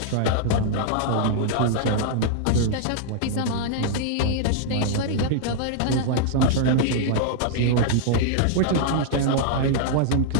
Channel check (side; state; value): both; different; correlation -0.01